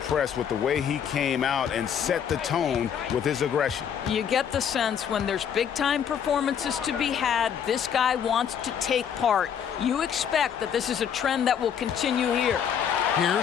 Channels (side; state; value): right; quieter; 8.2 dB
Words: with the way he came out and set the tone with his aggression. You get the sense when there's big-time performances to be had, this guy wants to take part. You expect that this is a trend that will continue here.